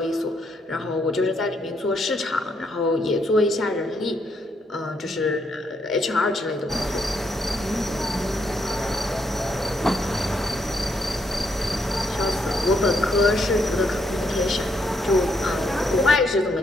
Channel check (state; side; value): normal; both; correlation 0.75